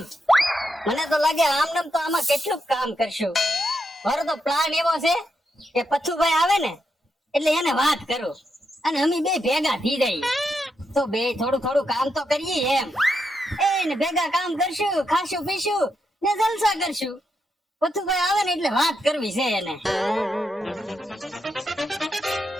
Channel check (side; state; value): both; normal; correlation 0.83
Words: મને તો લાગે આમ તો આમાં કેટલું કામ કરશું. મારો તો પ્લાન એવો છે કે પથ્થુભાઈ આવે ને એટલે એને વાત કરું અને અમે બે ભેગા થઈ જઈએ તો બે થોડું થોડું કામ તો કરીએ એમ. એને ભેગા કામ કરશું, ખાશું પીશું ને જલસા કરશું. પથ્થુભાઈ આવે ને એટલે વાત કરવી છે એને.